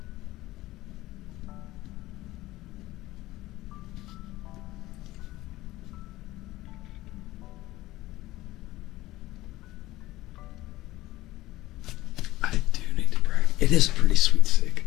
I do need to practice. It is pretty sweet sig.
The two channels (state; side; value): quieter; right; 17.1 dB